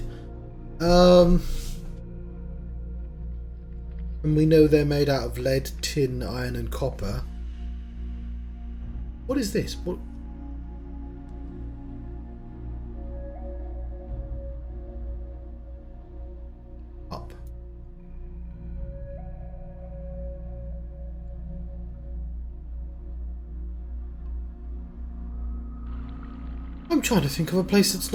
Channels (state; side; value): identical; both; correlation 1.00